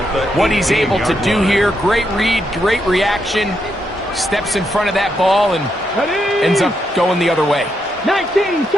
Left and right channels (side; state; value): both; normal; correlation 0.80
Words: what he's able to do here. Great read, great reaction. Steps in front of that ball and ends up going the other way. 19